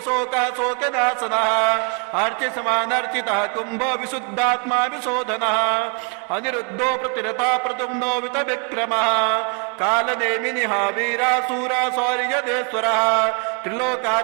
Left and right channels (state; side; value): quieter; left; 39.1 dB